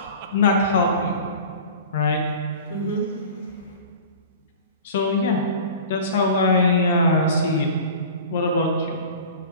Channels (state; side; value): inverted; both; correlation -0.38